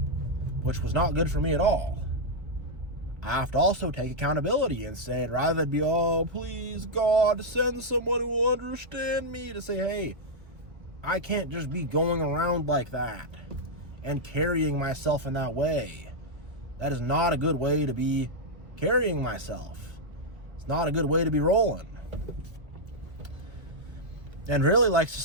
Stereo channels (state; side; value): late; left; 1.5 ms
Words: which was not good for me at all. I have to also take accountability and say, rather than be, oh, please, God, send someone who will understand me, to say, hey, I can't just be going around like that and carrying myself in that way. That is not a good way to be carrying myself. It's not a good way to be rolling. And really,